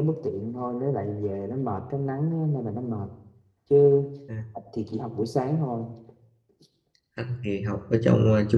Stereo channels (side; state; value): both; identical; correlation 1.00